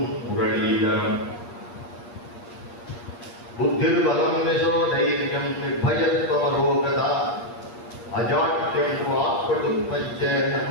முரளீதரம் புத்திர்பலம் யசோதைர்யம் நிர்பயத்வமரோகதா அஜாட்யம் வாக்படுத்வஞ்ச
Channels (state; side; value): late; right; 8.5 ms